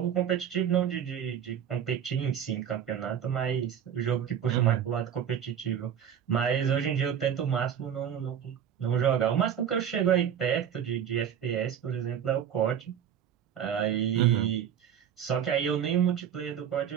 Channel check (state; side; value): quieter; left; 8.9 dB